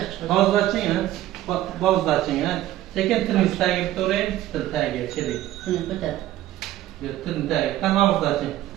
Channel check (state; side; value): quieter; left; 14.2 dB